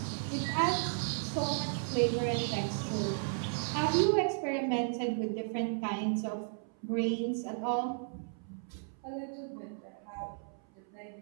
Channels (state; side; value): silent; left; 55 dB below the other